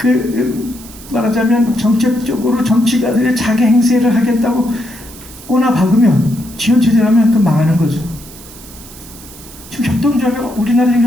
말하자면 정책적으로 정치가들의 자기 행세를 하겠다고 꼬나 박으면 지원체제라면 그 망하는 거죠. 지금 협동조합, 우리나라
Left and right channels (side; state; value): right; noise; hiss, 19 dB below the sound